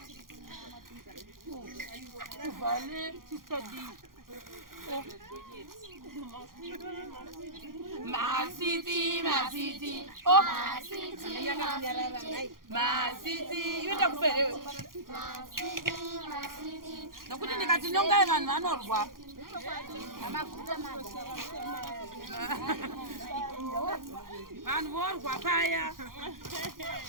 Vale, sister D. Masiti. Oh, Masiti. You don't pay. No, couldn't you get to know guy and or what? And war, papaya.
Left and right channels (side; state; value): left; late; 0.91 ms